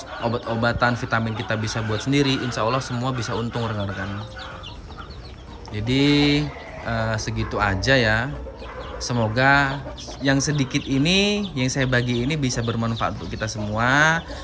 obat-obatan, vitamin kita bisa buat sendiri, insya Allah semua bisa untung rekan-rekan. Jadi segitu aja ya. Semoga yang sedikit ini yang saya bagi ini bisa bermanfaat untuk kita semua.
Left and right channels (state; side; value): identical; both; correlation 1.00